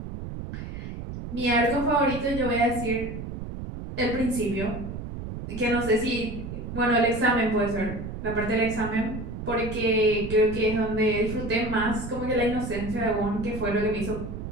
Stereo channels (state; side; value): noise; right; rumble, 8 dB below the sound